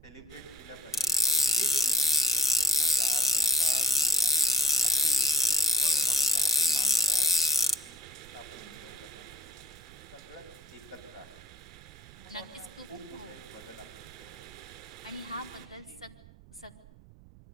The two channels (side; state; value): right; noise; rumble, 22 dB below the sound